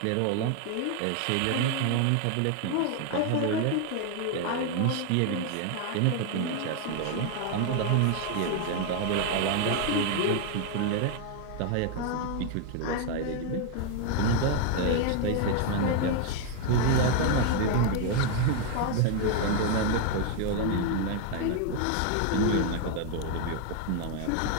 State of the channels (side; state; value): both; different; correlation 0.01